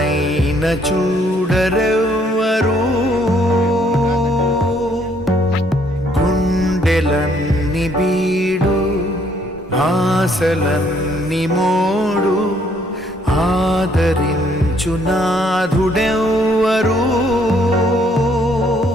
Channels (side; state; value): both; normal; correlation 0.66